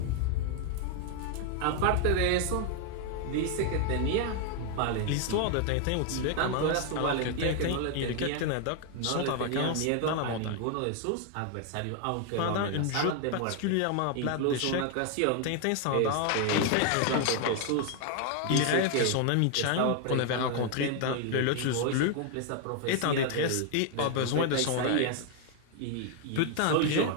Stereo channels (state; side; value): different; both; correlation 0.00